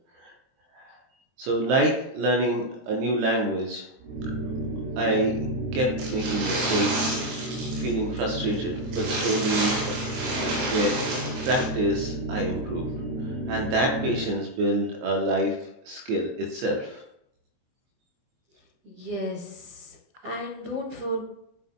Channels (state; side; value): late; left; 23 ms